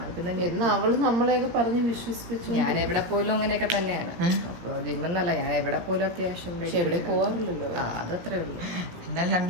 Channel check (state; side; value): late; left; 17 ms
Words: എന്ന് അവള് നമ്മളെയൊക്കെ പറഞ്ഞ് വിശ്വസിപ്പിച്ചു. ഞാൻ എവിടെ പോലും അങ്ങനെയൊക്കെ തന്നെയാണ്. അപ്പൊ ജിമ്മെന്നല്ല, ഞാൻ എവിടെ പോലും അത്യാവശ്യം പോവാറില്ലല്ലോ. അതത്രേ ഉള്ളൂ. എന്തായാലും 2